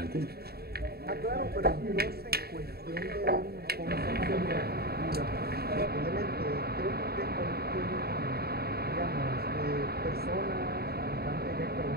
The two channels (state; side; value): late; left; 0.46 ms